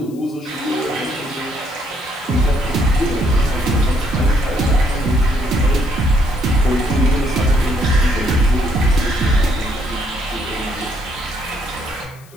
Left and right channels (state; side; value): noise; left; hiss, 26 dB below the sound